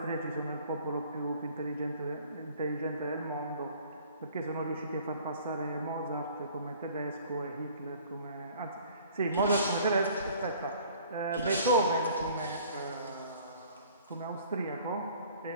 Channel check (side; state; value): both; inverted; correlation -0.52